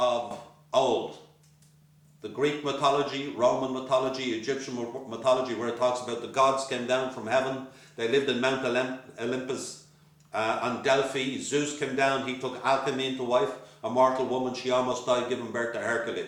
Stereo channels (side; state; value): both; identical; correlation 1.00